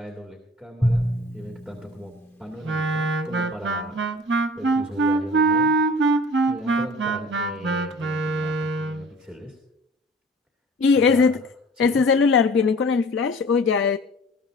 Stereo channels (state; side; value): normal; both; correlation 0.45